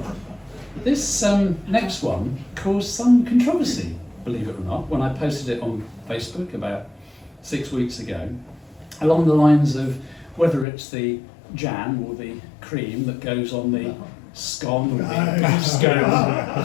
This next one caused some controversy, believe it or not, when I posted it on Facebook about 6 weeks ago, along the lines of whether it's the jam or the cream that goes on the scone or the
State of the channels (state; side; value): drops out; right; at 10.7 s